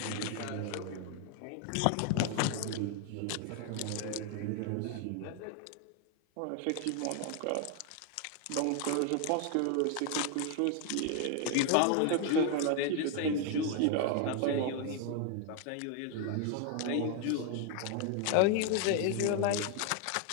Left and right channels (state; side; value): different; both; correlation 0.01